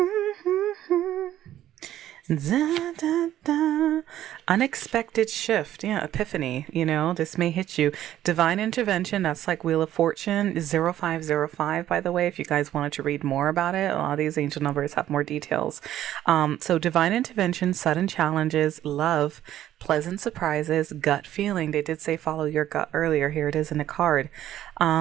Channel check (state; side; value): quieter; left; 12.4 dB